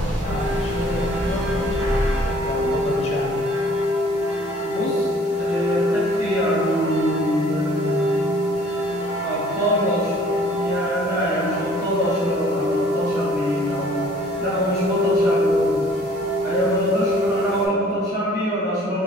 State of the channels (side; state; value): both; normal; correlation 0.54